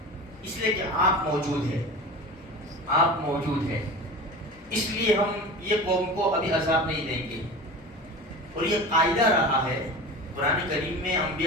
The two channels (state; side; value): normal; both; correlation 0.32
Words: اس لیے کہ آپ موجود ہیں، آپ موجود ہیں، اس لیے ہم یہ قوم کو ابھی عذاب نہیں دیں گے۔ اور یہ قاعدہ رہا ہے قرآن کریم میں،